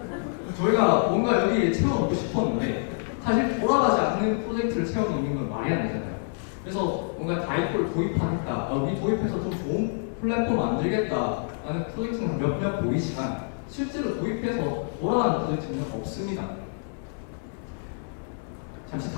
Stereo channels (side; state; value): right; silent; digital silence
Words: 저희가 뭔가 여기 채워넣고 싶었는데 사실 돌아가지 않는 프로젝트를 채워넣는 건 말이 안 되잖아요. 그래서 뭔가 다이코를 도입하겠다, 우리 도입해서 좀 좋은 플랫폼 만들겠다라는 프로젝트는 몇몇 보이지만 실제로 도입해서 돌아가는 프로젝트는 없습니다. 잠시